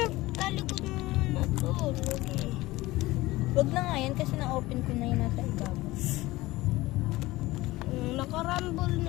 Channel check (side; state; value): right; quieter; 18.9 dB